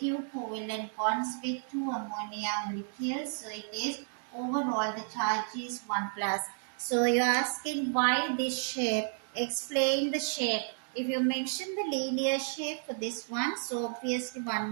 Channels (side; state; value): left; silent; 56 dB below the other